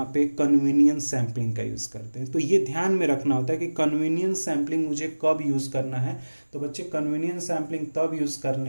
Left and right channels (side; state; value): both; inverted; correlation -1.00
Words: पे कन्वीनियंस सैंपलिंग का यूज करते हैं। तो ये ध्यान में रखना होता है कि कन्वीनियंस सैंपलिंग मुझे कब यूज करना है। तो बच्चे कन्वीनियंस सैंपलिंग तब यूज